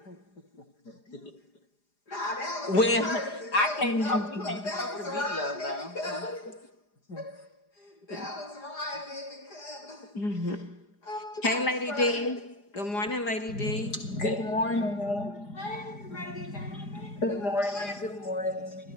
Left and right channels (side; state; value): right; late; 4.9 ms